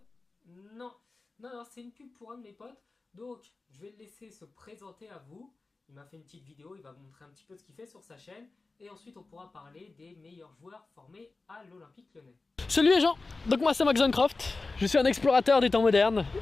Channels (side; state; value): right; quieter; 3.7 dB